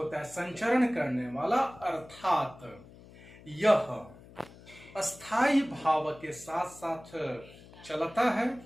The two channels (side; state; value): left; noise; hum, 21 dB below the sound